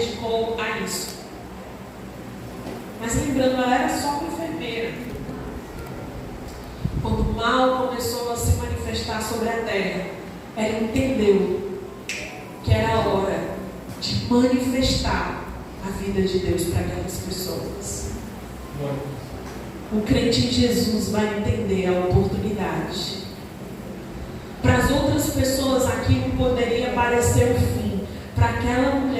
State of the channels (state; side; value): identical; both; correlation 1.00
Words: a isso. Mas lembrando, ela era só uma enfermeira. Quando o mal começou a se manifestar sobre a terra, ela entendeu que era a hora de manifestar a vida de Deus para aquelas pessoas. O crente em Jesus vai entender a oportunidade. Para as outras pessoas aquilo poderia parecer o fim. Para aquela